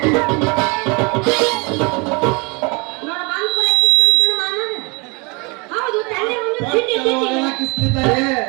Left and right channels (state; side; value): quieter; left; 29.7 dB